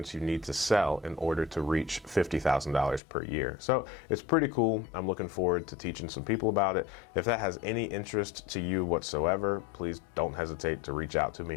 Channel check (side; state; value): right; drops out; at 3.0 s